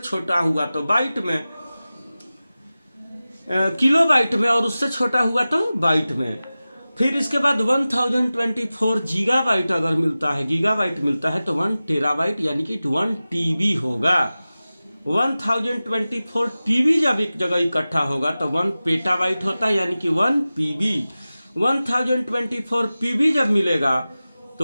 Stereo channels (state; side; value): inverted; both; correlation -0.96